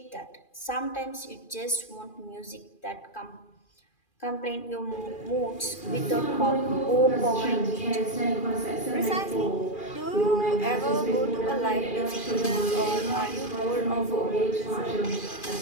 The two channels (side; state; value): right; late; 2.4 ms